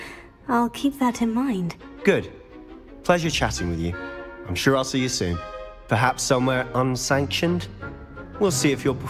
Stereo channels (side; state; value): both; identical; correlation 1.00